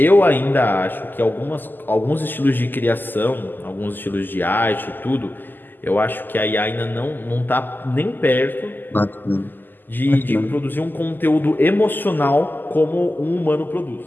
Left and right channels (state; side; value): late; right; 0.090 ms